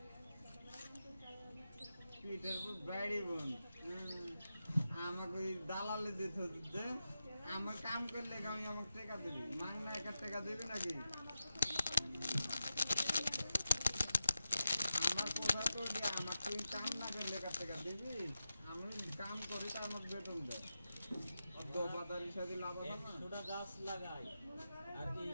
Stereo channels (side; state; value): both; inverted; correlation -0.90